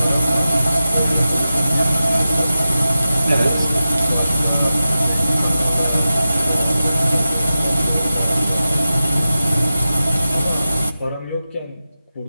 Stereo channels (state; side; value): inverted; both; correlation -0.92